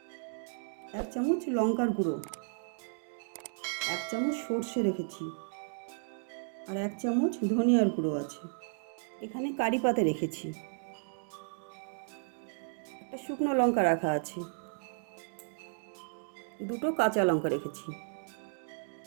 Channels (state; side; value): silent; left; digital silence